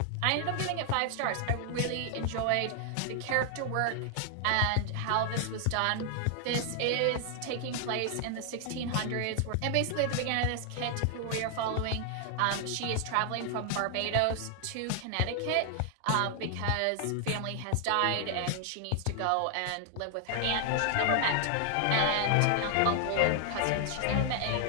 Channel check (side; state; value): both; different; correlation 0.00